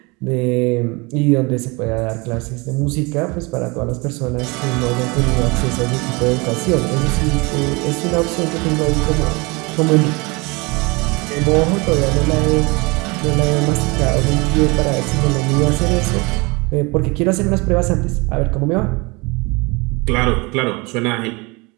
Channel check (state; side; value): quieter; left; 26.7 dB